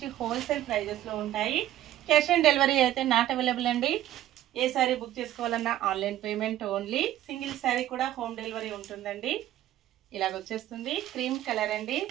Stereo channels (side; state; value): left; quieter; 13.1 dB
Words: హోల్సేల్ ప్రైజెస్లో ఉంటాయి. క్యాష్ ఆన్ డెలివరీ అయితే నాట్ అవైలబుల్ అండి. ఏ శారీ బుక్ చేసుకోవాలన్నా online payment only. Single sari కూడా హోమ్ డెలివరీ ఉంటుందండి. ఇలాగ వచ్చేస్తుంది. క్రీమ్ కలర్ అండి.